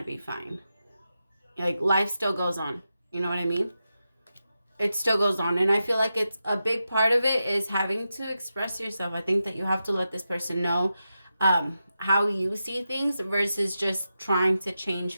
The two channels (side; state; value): both; inverted; correlation -0.89